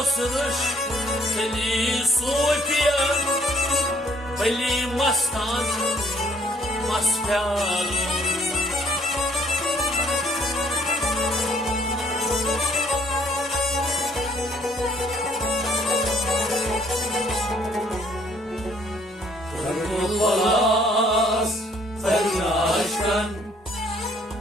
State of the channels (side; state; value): both; normal; correlation 0.63